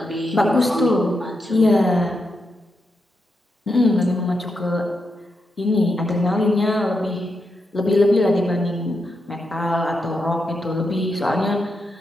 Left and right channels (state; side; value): normal; both; correlation 0.85